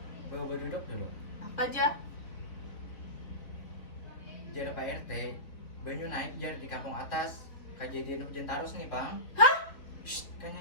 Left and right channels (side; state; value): right; late; 4.0 ms